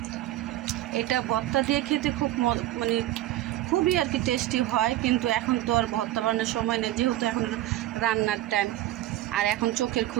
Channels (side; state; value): left; quieter; 14.8 dB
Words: এটা ভর্তা দিয়ে খেতে খুব মানে খুবই আর কি টেস্টি হয়। কিন্তু এখন তো আর ভর্তা বানানোর সময় নেই, যেহেতু এখন রান্নার টাইম। আর এখন চোখের